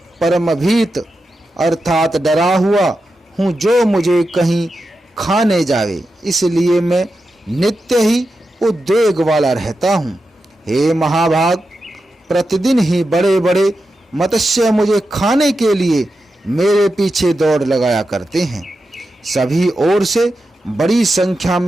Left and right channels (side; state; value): both; normal; correlation 0.89